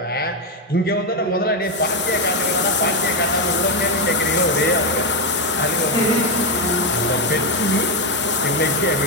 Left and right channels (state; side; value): normal; both; correlation 0.06